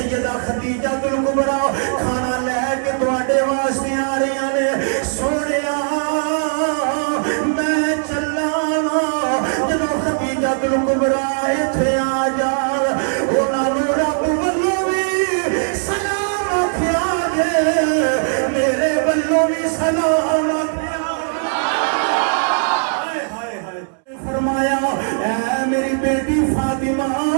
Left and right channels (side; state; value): left; silent; 67 dB below the other